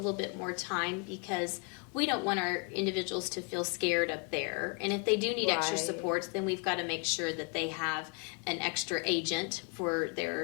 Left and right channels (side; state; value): right; quieter; 33.6 dB